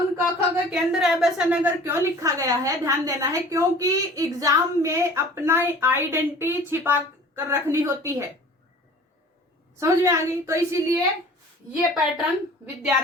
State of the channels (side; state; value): both; normal; correlation 0.46